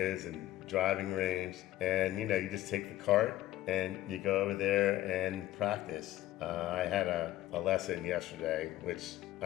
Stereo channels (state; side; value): quieter; right; 14.8 dB